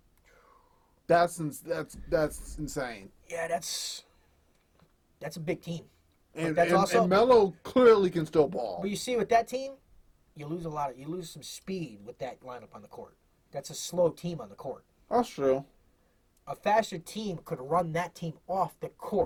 That's insane. Yeah, that's a big team. And that's also, Melo clearly can still ball. But you see, with that team, you lose some speed with that lineup on the court. That's a slow team on the court. That's true. A faster team could run that team off the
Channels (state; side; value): identical; both; correlation 1.00